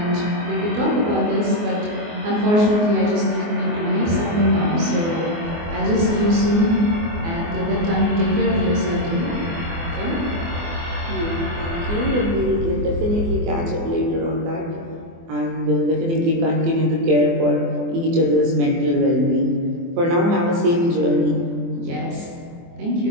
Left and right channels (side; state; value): left; late; 24 ms